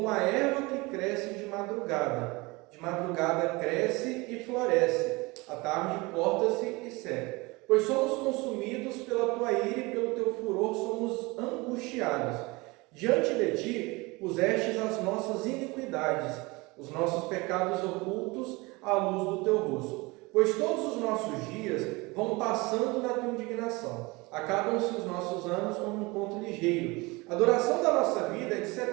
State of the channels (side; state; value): left; quieter; 24.3 dB